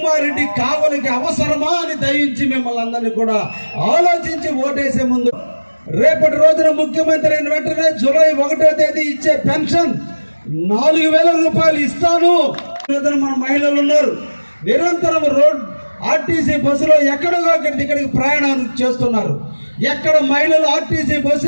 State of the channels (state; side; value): inverted; both; correlation -1.00